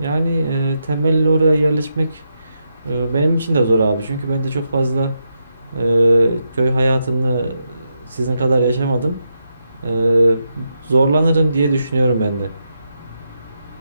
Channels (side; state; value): both; inverted; correlation -0.83